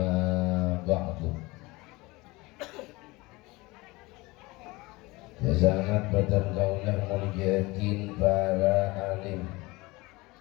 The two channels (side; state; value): right; quieter; 22.6 dB